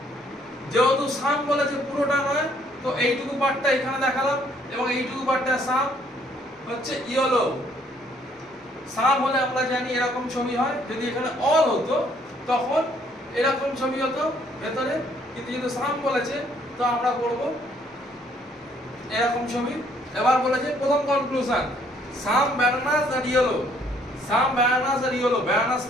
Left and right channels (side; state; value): both; normal; correlation 0.65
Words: যেহেতু সাম বলেছে পুরোটা নয়, তো এইটুকু পার্টটা এখানে দেখালাম এবং এইটুকু পার্টটা সাম হচ্ছে ইয়েলো। সাম হলে আমরা জানি এরকম ছবি হয়, যদি এখানে অল হতো তখন এরকম ছবি হতো ভেতরে, কিন্তু যেহেতু সাম বলেছে তো আমরা করব এরকম ছবি। এবার বলেছে প্রথম কনক্লুশন, সাম ব্যানানাস আর ইয়েলো। সাম ব্যানানাস আর ইয়েলো, ব্যানানাস